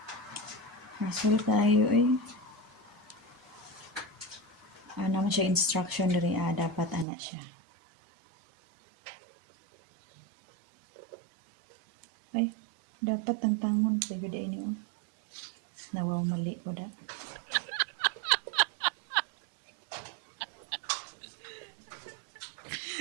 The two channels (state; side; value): drops out; left; at 7.1 s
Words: Hassle tayo eh. Naman siya instruction diri dapat ana siya. Ay, dapat ang tangon sa gud ini oh. Nawaw mali ko da.